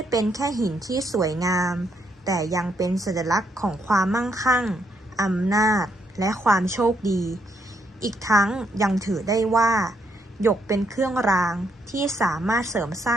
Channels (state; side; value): normal; both; correlation 0.75